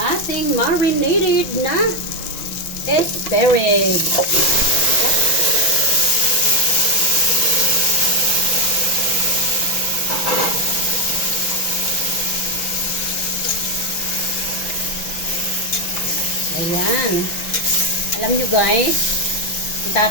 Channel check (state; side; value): late; right; 6.1 ms